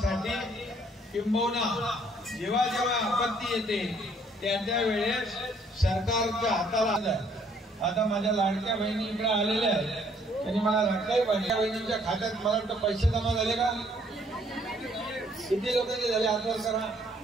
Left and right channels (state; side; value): normal; both; correlation 0.64